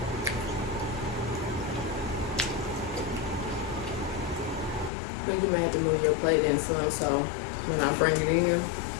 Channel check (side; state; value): right; drops out; at 4.9 s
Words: I think you may have to move your plate in some, so when I bring it in,